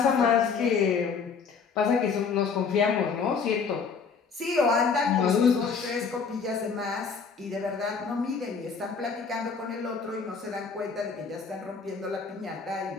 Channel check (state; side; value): quieter; right; 5.5 dB